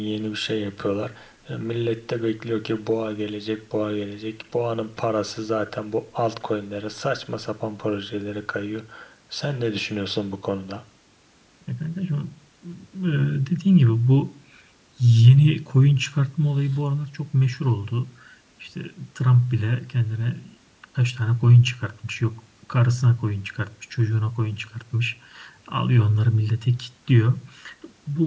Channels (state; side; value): identical; both; correlation 1.00